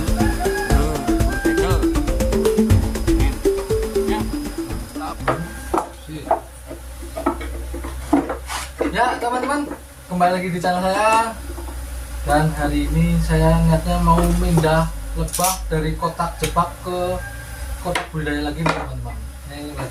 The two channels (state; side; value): identical; both; correlation 1.00